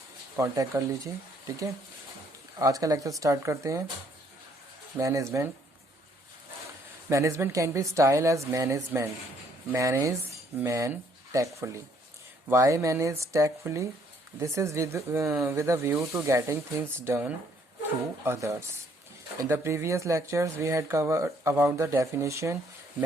कांटेक्ट कर लीजिए। ठीक है, आज का लेक्चर स्टार्ट करते हैं। Management can be styled as manage man tactfully. Why manage tactfully? This is with a view to getting things done through others. In the previous lectures we had covered about the definition.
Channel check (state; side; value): normal; both; correlation 0.66